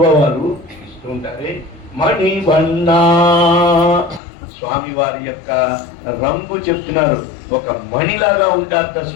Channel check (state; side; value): drops out; right; at 4.2 s